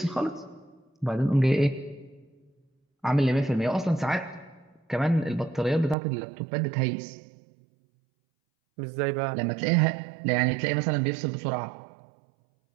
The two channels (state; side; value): drops out; left; at 6.0 s